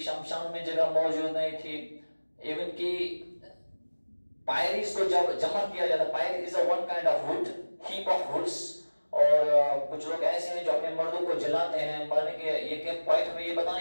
शमशान में जगह मौजूद नहीं थी, इवन की पायरीज को जब जमा किया जाता, pyre is a one kind of wood, heap of woods. और कुछ लोग ऐसे हैं जो अपने मर्दों को जलाते हैं मरने के। ये पॉइंट हमें ये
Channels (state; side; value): inverted; both; correlation -1.00